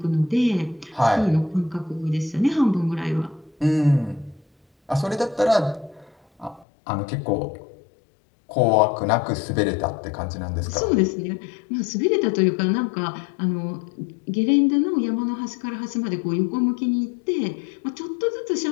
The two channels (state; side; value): drops out; right; at 6.7 s